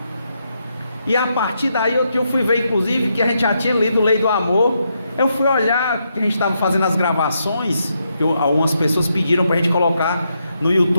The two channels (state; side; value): inverted; both; correlation -0.80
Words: E a partir daí eu fui ver, inclusive, que a gente já tinha lido Lei do Amor. Eu fui olhar, que a gente estava fazendo as gravações, que algumas pessoas pediram para a gente colocar no